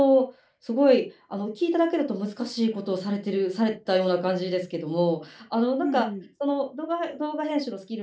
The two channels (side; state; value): both; identical; correlation 1.00